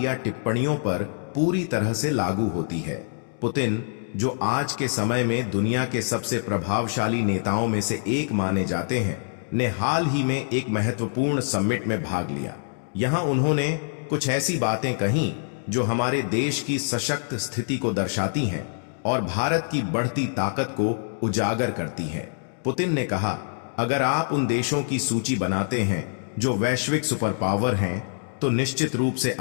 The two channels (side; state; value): right; silent; digital silence